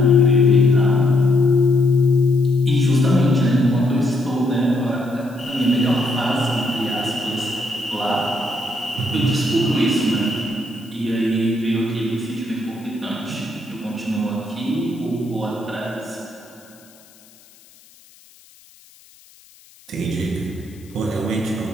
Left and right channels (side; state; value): left; noise; hiss, 27 dB below the sound